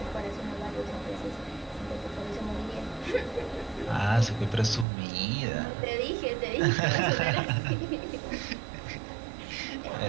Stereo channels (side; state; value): left; drops out; at 4.9 s